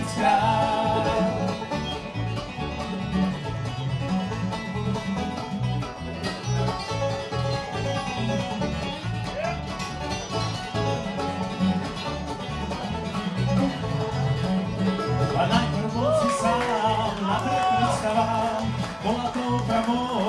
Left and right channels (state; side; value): identical; both; correlation 1.00